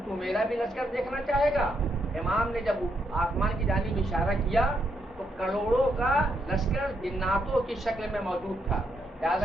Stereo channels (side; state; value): both; normal; correlation 0.78